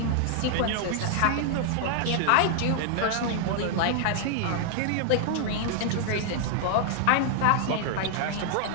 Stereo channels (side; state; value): both; different; correlation 0.00